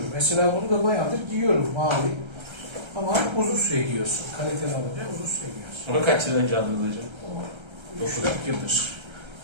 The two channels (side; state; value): left; late; 1.3 ms